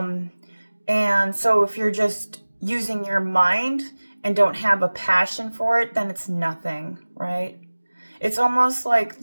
so if you're just using your mind and don't have a passion for it, then it's nothing, right? It's almost like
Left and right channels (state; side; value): inverted; both; correlation -1.00